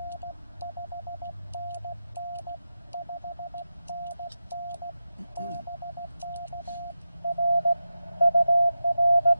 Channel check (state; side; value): inverted; both; correlation -0.89